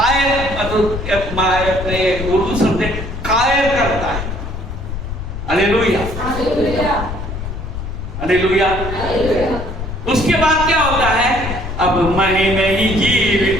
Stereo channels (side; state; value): left; noise; rumble, 7 dB below the sound